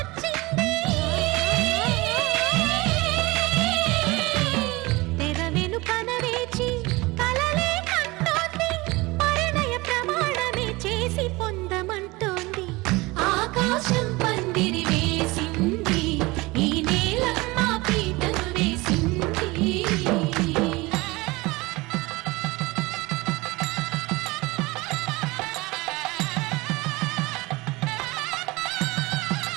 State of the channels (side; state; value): left; quieter; 22.7 dB